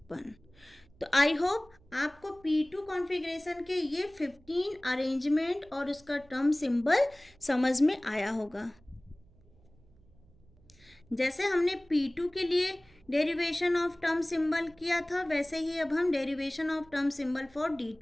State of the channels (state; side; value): noise; right; hum, 28 dB below the sound